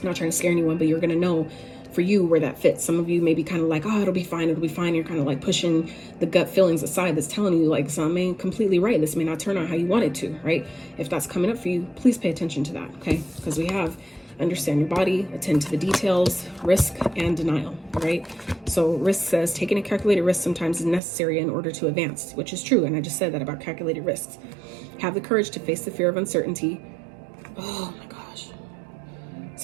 not trying to scare anyone, but you're gonna know for you where that fits. Some of you may be kind of like, oh, it'll be fine. You're kind of like pushing the gut feelings aside that's telling you like, something ain't completely right. This may not turn out how you want it to, right? If that's coming up for you, please pay attention to that, okay? Because we have understand your body, attend to the details, risk and denial, right? So risk says taking a calculated risk sometimes is necessary in order to advance, which is true. And I just said that about calculated risks. Have the courage to face the fear of uncertainty. Oh my gosh.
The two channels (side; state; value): left; drops out; at 21.0 s